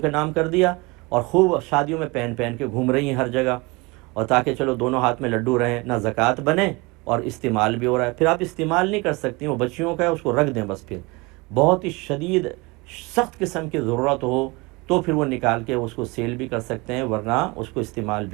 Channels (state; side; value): quieter; left; 25.6 dB